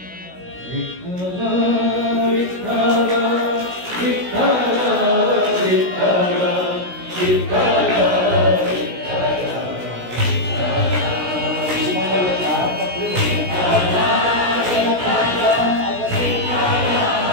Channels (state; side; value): late; left; 16 ms